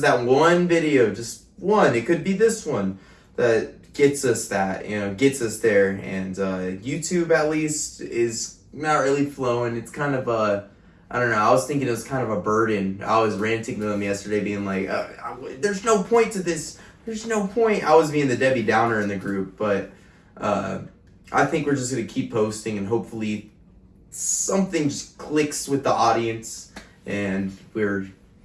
that one video, just one. It could be this one that gets us gets us there. And YouTube at least is not really flowing. It's kind of I don't know. I was thinking it was kind of a burden. I was ranting to them yesterday, being like, "There's no point to this. There's no point." I was being the Debbie Downer in the group, but I think we're just gonna keep posting, and hopefully something just clicks with the audience, and we're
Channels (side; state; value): both; identical; correlation 1.00